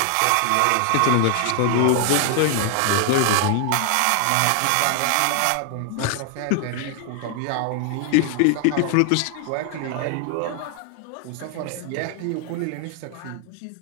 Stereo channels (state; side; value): different; both; correlation 0.00